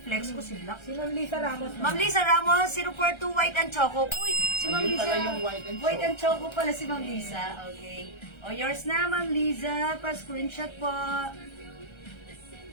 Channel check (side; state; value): right; late; 1.3 ms